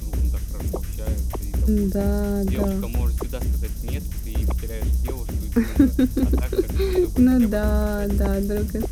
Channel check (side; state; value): both; identical; correlation 1.00